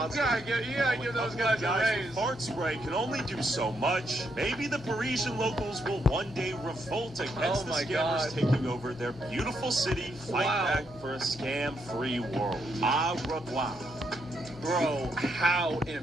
Yeah, give those guys a Guys with raise. fart spray can only do so much. Maybe the Parisian locals will one day revolt against the my scammers God. taking over their beautiful city, fight back for a scam-free world. Au revoir. Bro, how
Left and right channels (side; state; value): both; normal; correlation 0.78